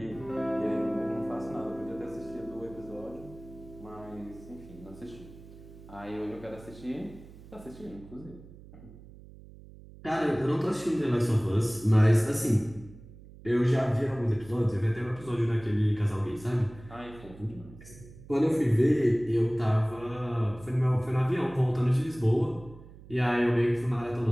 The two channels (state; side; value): noise; right; hum, 19 dB below the sound